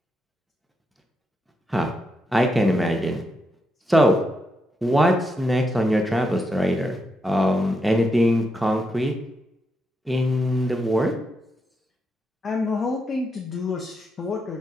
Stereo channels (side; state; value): both; normal; correlation 0.83